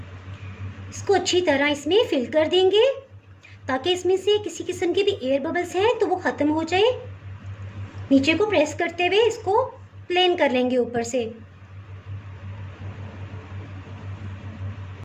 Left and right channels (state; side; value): identical; both; correlation 1.00